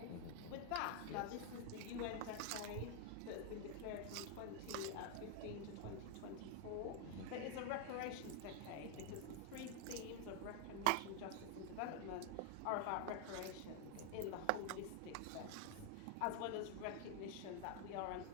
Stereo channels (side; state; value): both; different; correlation 0.01